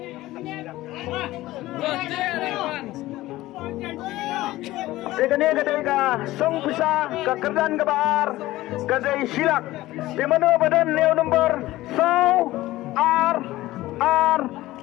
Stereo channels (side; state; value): right; quieter; 17.0 dB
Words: Dekani kadai ka song pisah ke kerdan kebar kadai silak di mana badan neo nombor so are